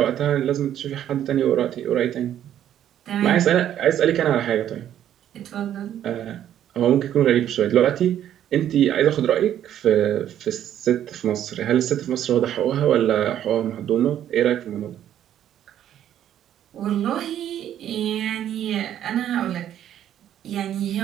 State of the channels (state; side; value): quieter; left; 10.9 dB